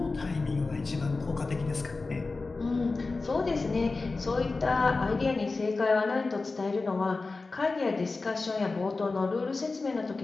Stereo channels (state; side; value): quieter; right; 3.7 dB